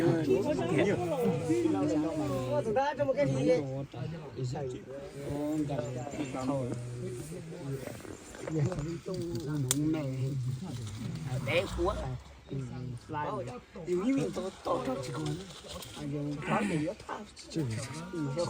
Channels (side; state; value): both; identical; correlation 1.00